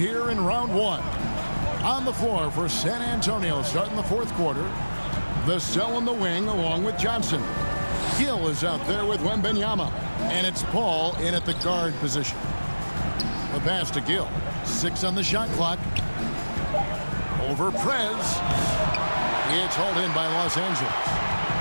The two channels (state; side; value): inverted; both; correlation -1.00